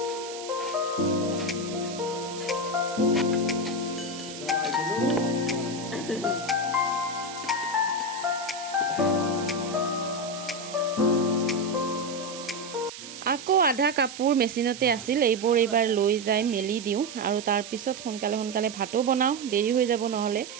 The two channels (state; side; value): noise; right; hiss, 12 dB below the sound